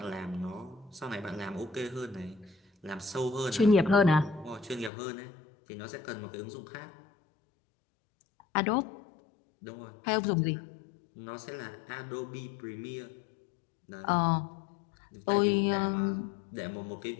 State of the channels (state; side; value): drops out; right; at 4.9 s